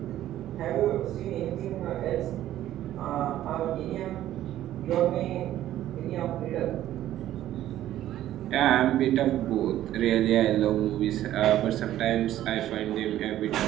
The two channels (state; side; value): quieter; left; 13.0 dB